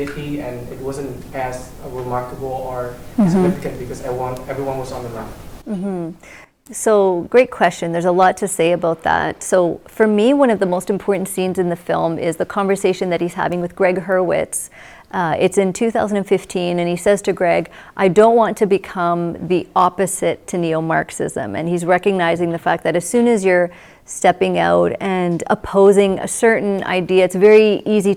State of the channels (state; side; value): identical; both; correlation 1.00